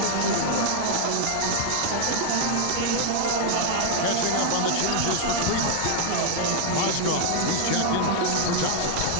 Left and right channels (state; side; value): different; both; correlation 0.00